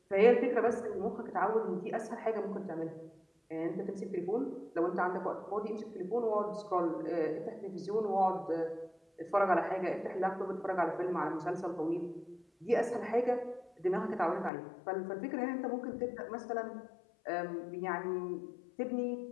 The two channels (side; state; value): right; drops out; at 14.5 s